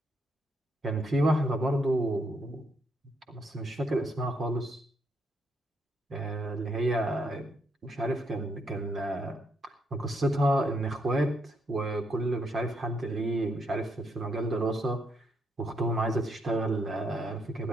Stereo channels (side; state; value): both; normal; correlation 0.76